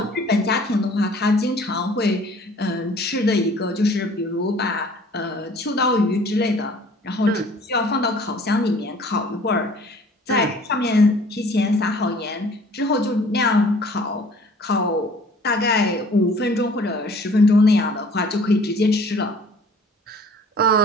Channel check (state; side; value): normal; both; correlation 0.52